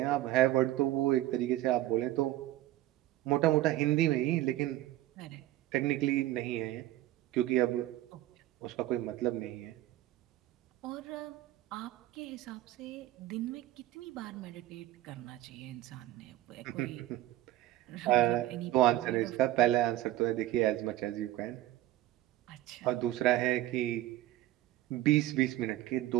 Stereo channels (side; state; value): left; quieter; 15.0 dB